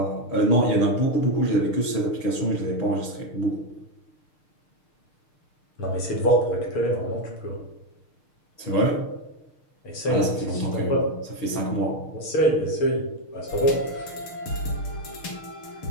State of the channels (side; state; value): right; late; 6.6 ms